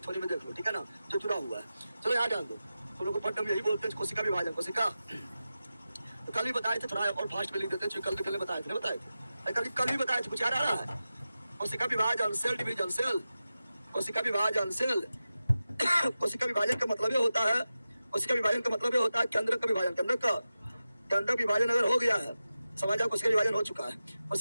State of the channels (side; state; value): both; inverted; correlation -0.93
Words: थोड़ी में देख लो, ठीक है ना, जो जुड़ा हुआ है। चलो यहाँ जान दो, तुम लोग को पढ़ने में यही बोलते हैं कोशिका विभाजन। कोशिका तो कल भी बताए थे, थोड़ा और फास्ट में लिख देते हैं, कल बताए थे, कल भी बताए थे, कुछ याद आ रहा है? कोशिका विभाजन, सेल डिवीजन, सेल, कोशिका विभाजन, सेल। कोशिका विभाजन का मतलब ये होता है, कोशिका विभाजन का मतलब ये होता है केंद्र का विभाजन, केंद्र विभाजन अगर हो गया है, समझ जाओ कोशिका विभाजन हो चुका है।